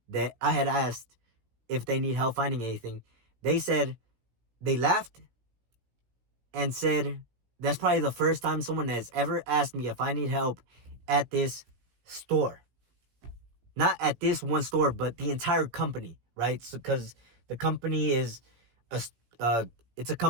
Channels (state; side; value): late; left; 16 ms